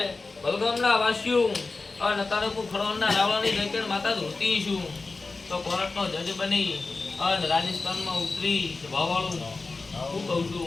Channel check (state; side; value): quieter; right; 3.8 dB